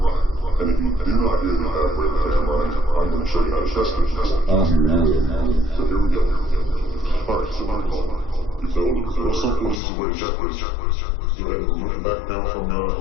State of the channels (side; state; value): right; drops out; at 9.8 s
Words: And if you do not hear the evaporator fan running, I'm going to show you how to test it. So here we go. Alright, so the most simple and easy way to check this. Go ahead and remove the back panel from the